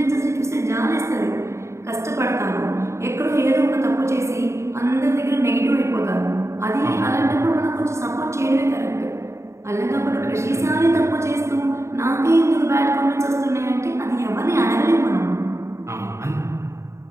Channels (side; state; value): left; late; 0.14 ms